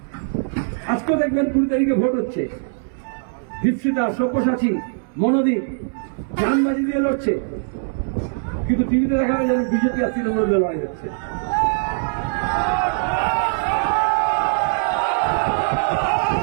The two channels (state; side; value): silent; left; 65 dB below the other